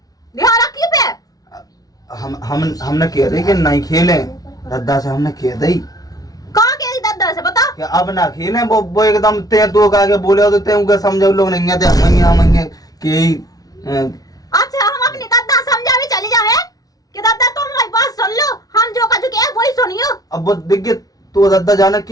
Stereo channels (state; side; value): late; right; 0.18 ms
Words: ध्यान रखिए पे हमने कह दी कि नहीं खेले दद्दा से हमने कह दी कहाँ कह दी दद्दा से बता कि अब ना खेले वो एकदम ते तो आगे बोले तो ते उनके समझो लोग नहीं थे मंगे कि अच्छा हम अपनी दद्दा समझा भी चली जाए कि दद्दा तुम हमारी बात सुन लो हम जो कह चुके हैं वही सुनियो। अब वो दिखे तो दद्दा जाने